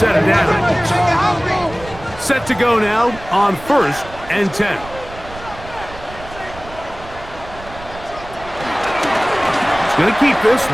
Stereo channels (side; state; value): right; noise; rumble, 16 dB below the sound